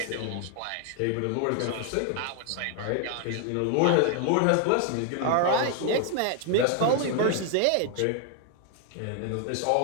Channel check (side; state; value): both; different; correlation 0.00